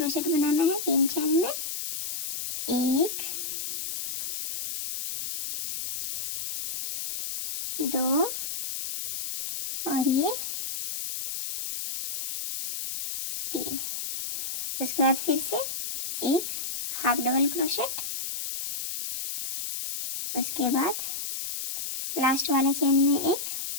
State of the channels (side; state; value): left; noise; hiss, 5 dB below the sound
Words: बनाना है 3 चेन में। 1 2 और ये 3। उसके बाद फिर से एक हाफ डबल क्रोशेट, उसके बाद लास्ट वाले चेन में एक